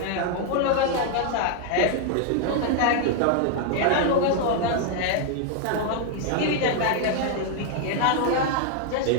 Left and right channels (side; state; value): both; different; correlation 0.00